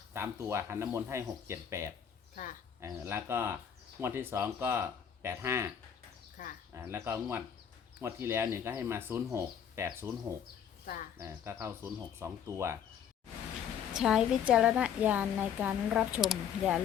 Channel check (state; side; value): quieter; right; 8.5 dB